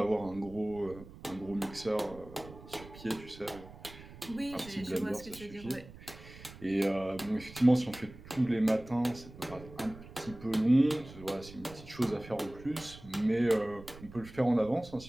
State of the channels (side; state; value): right; noise; rumble, 17 dB below the sound